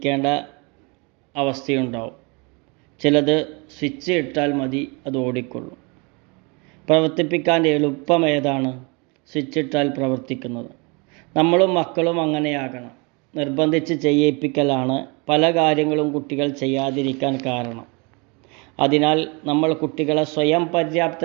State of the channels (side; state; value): left; quieter; 30.0 dB